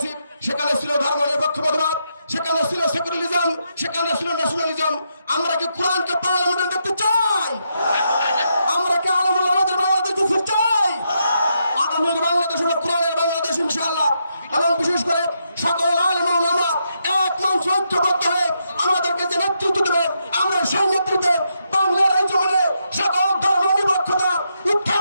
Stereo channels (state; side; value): inverted; both; correlation -0.81